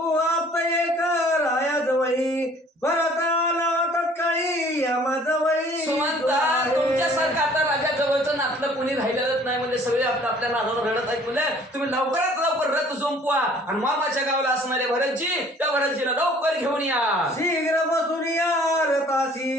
आप एक राया जवळी भरत आला तत्काळी यमा जवळी. सुमंता तुमच्यासारखं आता राजा जवळचं नातलं कोणी राहिलेलंच नाही म्हणजे सगळे आपल्या नादावर रडत आहेत म्हणजे तुम्ही लवकरात लवकर रथ झोंपवा आणि मामाच्या गावाला असणारे भरतजी त्या भरतजीला लवकर घेऊन या. शीघ्र बसून या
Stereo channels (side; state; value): both; normal; correlation 0.54